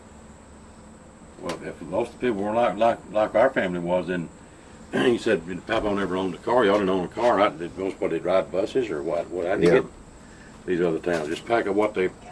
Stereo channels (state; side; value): identical; both; correlation 1.00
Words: Well, if most of the people were like our family was, then he said, Papa never owned a car. Y'all didn't own a car. Most what, they'd ride buses or what? How'd you Yeah. get these other towns? Just pack up what they,